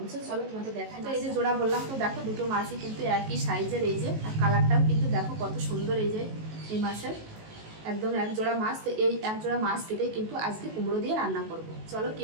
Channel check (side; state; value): left; late; 19 ms